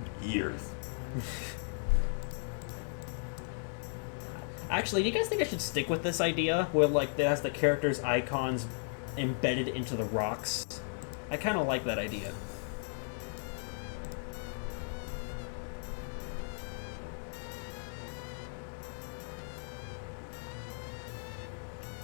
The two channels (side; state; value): right; silent; 54 dB below the other